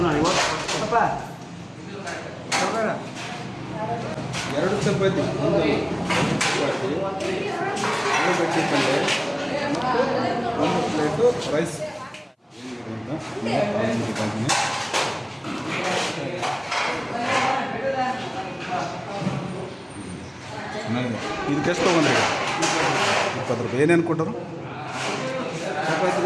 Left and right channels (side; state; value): both; identical; correlation 1.00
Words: ಎರಡು ಚಪಾತಿ, ಒಂದು ಚಪಾತಿ, ಆಲೂಗಡ್ಡೆ ಪಲ್ಯ ಮತ್ತು ಒಂದು ಪ್ಲೇಟು ರೈಸ್. ಇದಕ್ಕೆ ಎಷ್ಟು ತೊಗೊಂಡ್ರಿ? 20 ರೂಪಾಯಿ. ಏನೇನು ಕೊಟ್ಟರು?